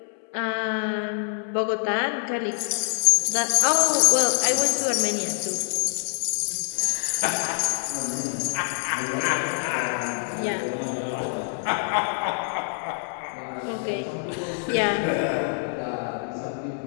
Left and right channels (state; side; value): silent; right; 61 dB below the other